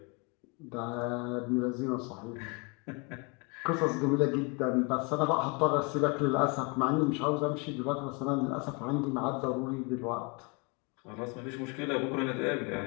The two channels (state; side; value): quieter; right; 30.6 dB